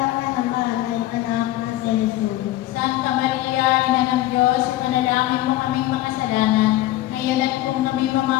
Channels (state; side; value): quieter; right; 15.5 dB